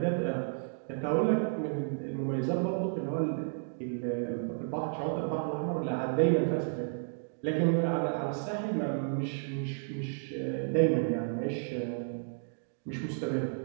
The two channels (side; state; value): left; silent; digital silence